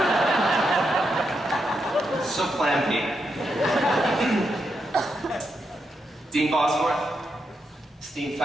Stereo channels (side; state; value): both; normal; correlation 0.83